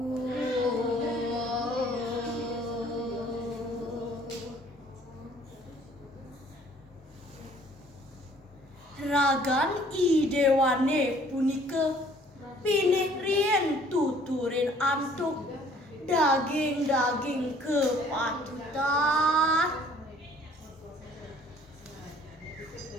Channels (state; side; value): normal; both; correlation 0.57